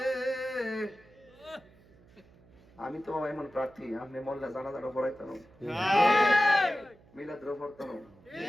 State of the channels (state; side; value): noise; right; hum, 27 dB below the sound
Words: আমি তো এমন প্রার্থী আপনি মোল্লা জানাজাটা পড়াইতাম মিলাদও পড়তাম